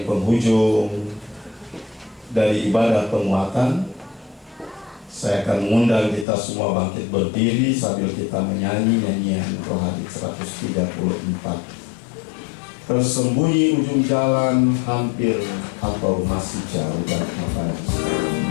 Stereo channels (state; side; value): drops out; right; at 6.2 s